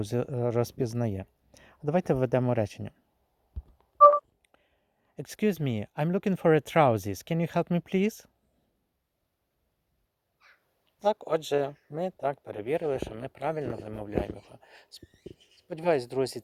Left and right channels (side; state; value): both; identical; correlation 1.00